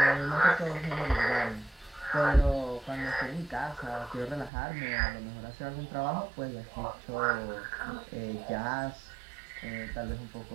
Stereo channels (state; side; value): drops out; left; at 4.5 s